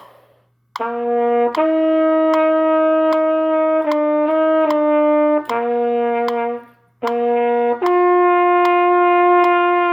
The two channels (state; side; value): identical; both; correlation 1.00